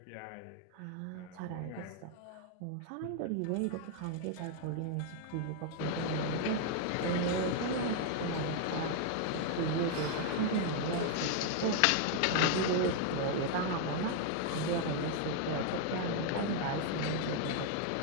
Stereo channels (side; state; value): both; different; correlation 0.00